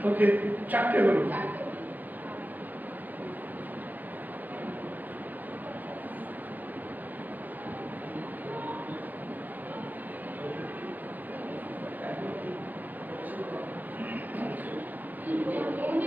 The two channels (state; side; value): late; left; 0.086 ms